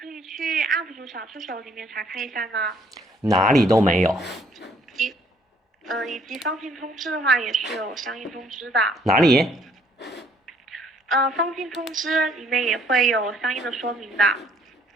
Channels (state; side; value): normal; both; correlation 0.63